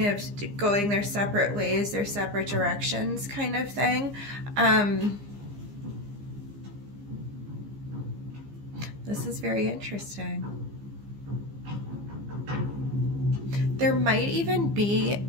of going their separate ways, their separate directions kind of thing. This is very interesting. There might even be,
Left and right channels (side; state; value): left; late; 15 ms